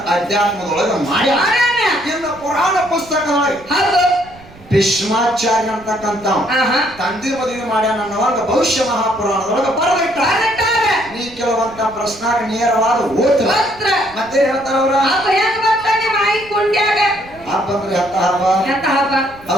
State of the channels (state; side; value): noise; right; rumble, 22 dB below the sound